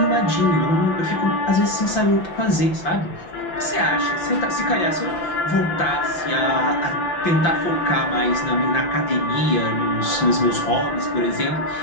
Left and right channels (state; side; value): late; right; 5.9 ms